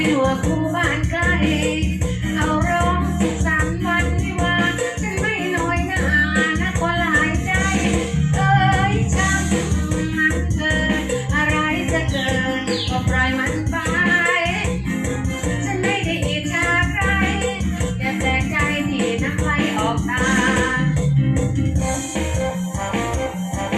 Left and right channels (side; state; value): both; identical; correlation 1.00